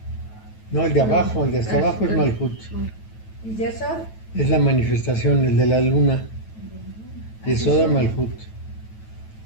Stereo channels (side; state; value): right; late; 9.2 ms